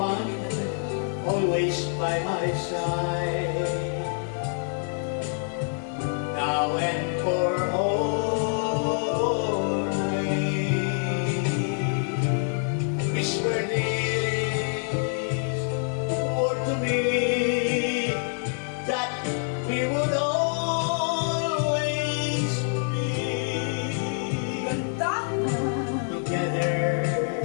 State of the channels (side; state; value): right; silent; 61 dB below the other